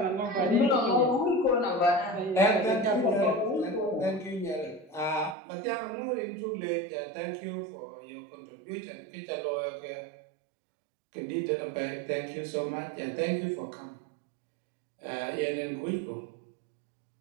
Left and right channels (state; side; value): drops out; left; at 5.4 s